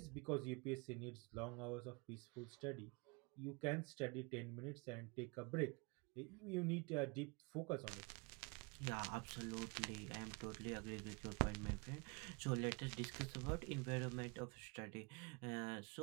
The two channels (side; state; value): left; quieter; 29.5 dB